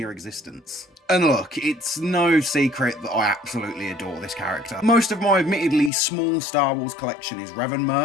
existence. And look, it's no secret that I absolutely adore this character. Most of my admittedly small Star Wars collection is Revan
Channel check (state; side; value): drops out; right; at 5.9 s